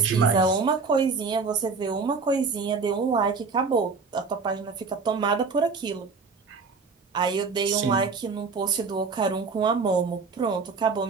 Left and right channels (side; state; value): left; quieter; 4.7 dB